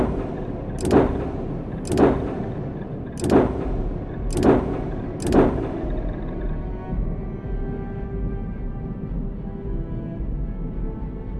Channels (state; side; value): identical; both; correlation 1.00